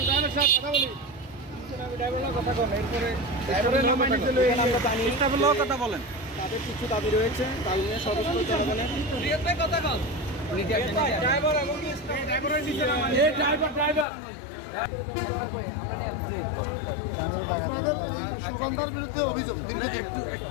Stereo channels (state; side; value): drops out; right; at 14.1 s